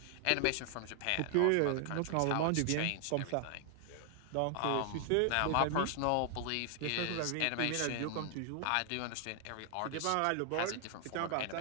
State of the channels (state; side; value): different; both; correlation 0.00